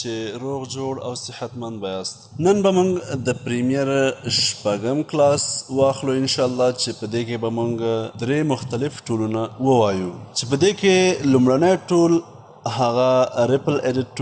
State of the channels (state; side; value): identical; both; correlation 1.00